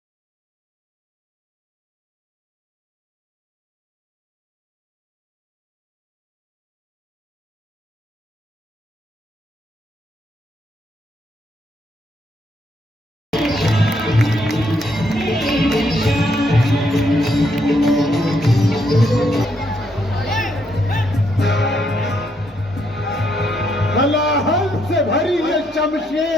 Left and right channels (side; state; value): both; normal; correlation 0.75